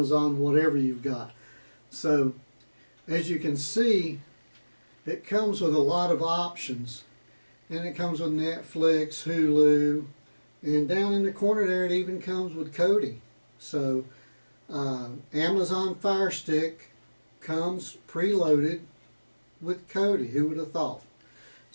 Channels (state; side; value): inverted; both; correlation -1.00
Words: whatever you've got. So as you can see, it comes with a lot of options, and it comes with Netflix, Hulu, and down in the corner there it even comes with Kodi. So Amazon Fire Stick comes preloaded with Kodi. Who would have thought?